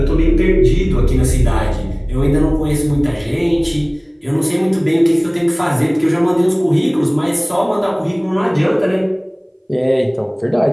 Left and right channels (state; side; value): identical; both; correlation 1.00